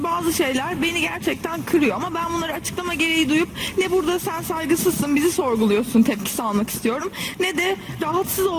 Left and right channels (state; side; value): identical; both; correlation 1.00